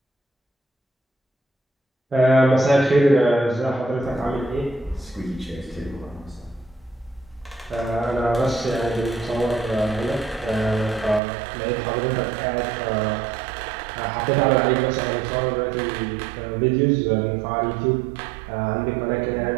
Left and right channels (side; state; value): left; drops out; at 11.2 s